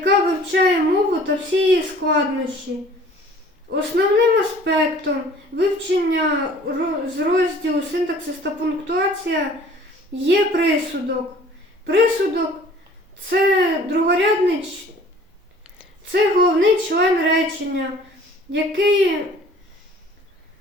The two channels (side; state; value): both; normal; correlation 0.50